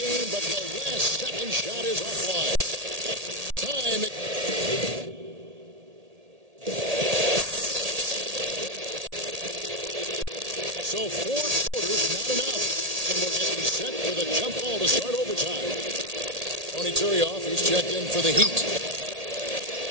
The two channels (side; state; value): left; late; 1.8 ms